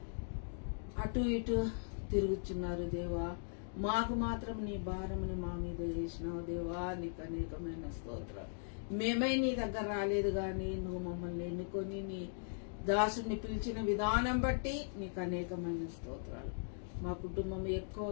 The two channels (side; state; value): right; silent; digital silence